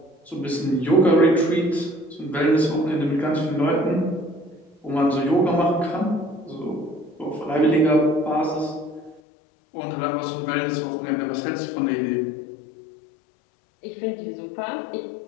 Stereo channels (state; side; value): drops out; right; at 9.2 s